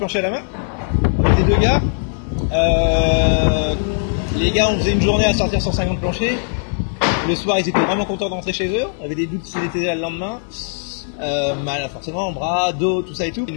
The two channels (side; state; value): right; silent; digital silence